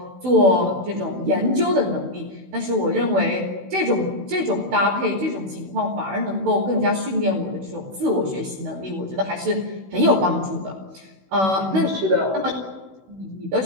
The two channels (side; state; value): left; late; 16 ms